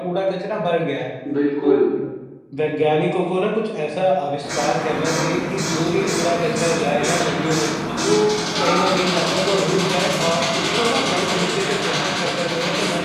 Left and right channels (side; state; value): both; identical; correlation 1.00